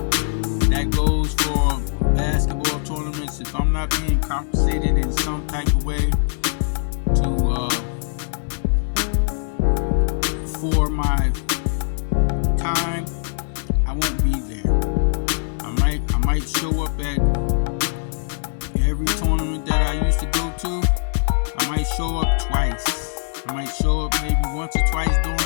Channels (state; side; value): silent; right; digital silence